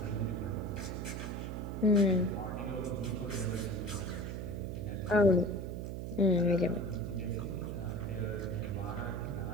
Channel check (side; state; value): right; noise; hum, 5 dB below the sound